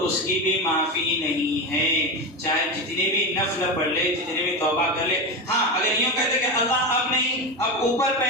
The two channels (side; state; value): both; normal; correlation 0.18